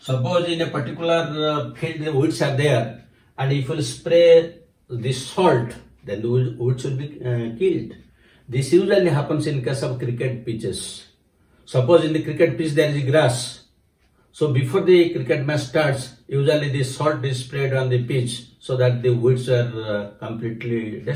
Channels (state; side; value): identical; both; correlation 1.00